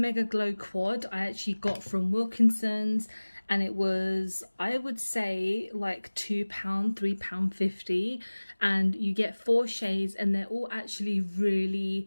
Glow Quad I actually got from Wilkinson's, and it was, I would say, like £2, £3.50, and you get 4 shades and they're all actually really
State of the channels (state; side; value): inverted; both; correlation -1.00